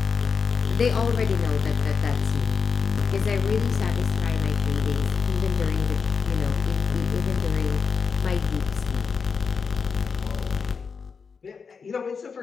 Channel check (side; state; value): right; quieter; 5.6 dB